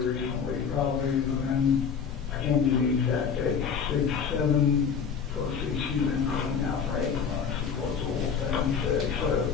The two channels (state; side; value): quieter; right; 6.5 dB